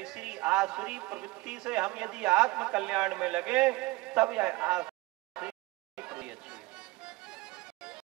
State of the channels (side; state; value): left; quieter; 21.3 dB